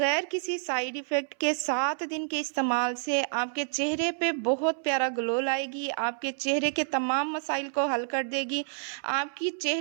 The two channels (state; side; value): silent; left; 59 dB below the other